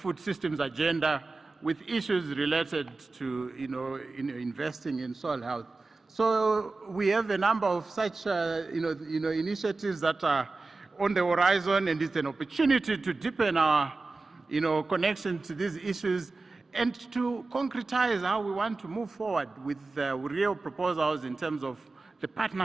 systems agenda with issues related to, investing in soil health. So we have a number of such, initiatives that are on the horizon, and it's an opportunity to deepen our, connection to these issues and to concretize how we want to move forward with real proposals in terms of the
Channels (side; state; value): left; quieter; 3.6 dB